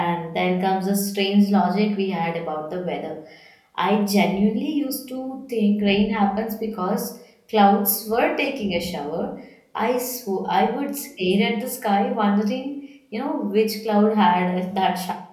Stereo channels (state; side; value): identical; both; correlation 1.00